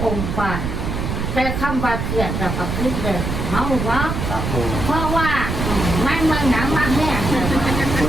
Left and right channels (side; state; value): right; noise; rumble, 3 dB below the sound